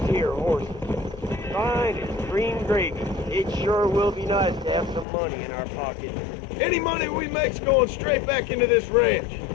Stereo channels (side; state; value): right; drops out; at 5.1 s